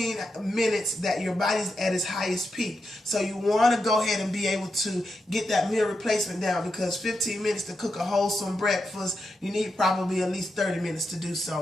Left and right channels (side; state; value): both; normal; correlation 0.86